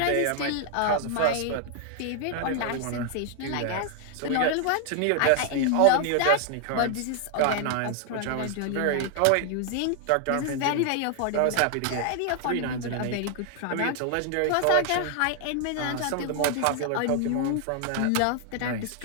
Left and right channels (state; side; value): different; both; correlation 0.00